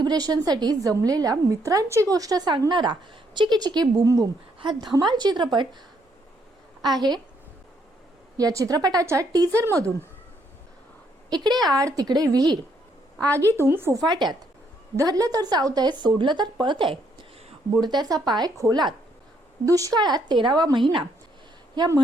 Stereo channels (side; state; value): both; normal; correlation 0.72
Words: जमलेल्या मित्रांची गोष्ट सांगणारा चिकी चिकी बूम बूम हा धमाल चित्रपट आहे। या चित्रपटाच्या टीजर मधून इकडे आड तिकडे विहीर, आगीतून फुफाट्यात, धरलं तर चावतंय सोडलं तर पळतंय, बुडत्याचा पाय खोलात, दुष्काळात 13वा महिना या